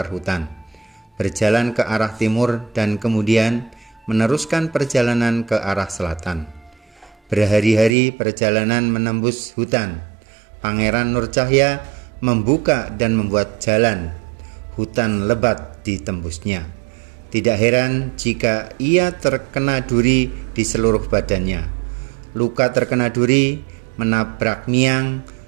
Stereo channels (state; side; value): drops out; left; at 7.9 s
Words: hutan, berjalan ke arah timur dan kemudian meneruskan perjalanan ke arah selatan. Berhari-hari perjalanan menembus hutan. Pangeran Nur Cahya membuka dan membuat jalan. Hutan lebat ditembusnya. Tidak heran jika ia terkena duri di seluruh badannya. Luka terkena duri, menabrak miang,